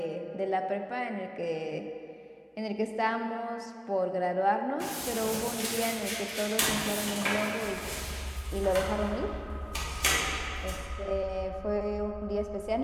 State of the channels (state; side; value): identical; both; correlation 1.00